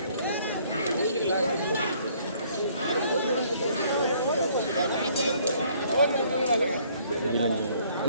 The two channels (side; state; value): both; inverted; correlation -0.62